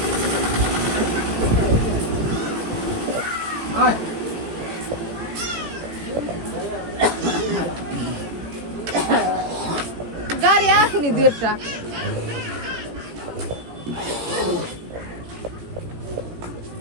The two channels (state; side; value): late; left; 18 ms